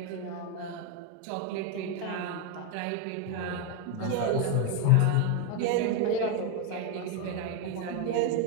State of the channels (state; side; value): different; both; correlation 0.02